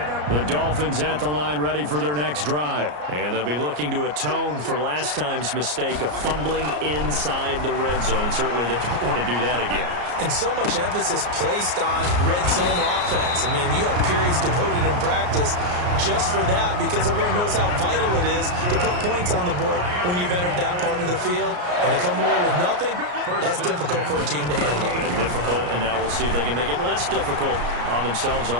The Dolphins at the line ready for their next drive. And they'll be looking to atone for last time's mistake of fumbling inside the red zone. Certainly they don't want to do that again. And so much emphasis placed on red zone offense. I mean, you have periods devoted in practice just for that because everyone knows how vital it is to put points on the board when you've entered that part of the field. And to come away with nothing, that's difficult for a team to handle. Difficult, and now we'll see if they can make it less difficult on themselves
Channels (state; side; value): late; left; 34 ms